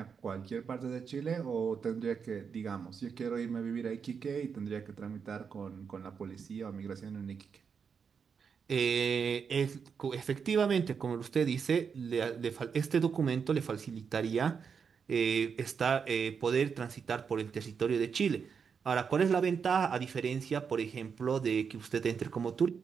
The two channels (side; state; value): left; quieter; 6.3 dB